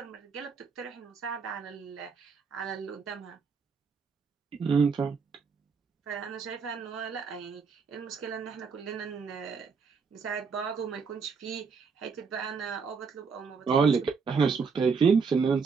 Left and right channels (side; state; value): left; quieter; 5.4 dB